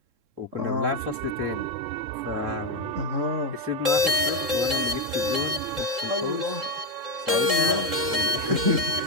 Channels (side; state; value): left; late; 3.7 ms